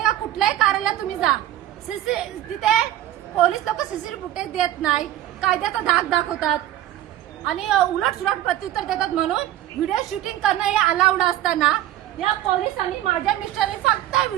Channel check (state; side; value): quieter; left; 13.5 dB